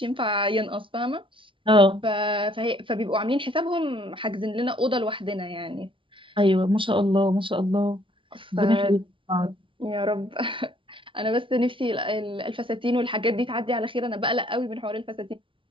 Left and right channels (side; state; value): left; late; 0.25 ms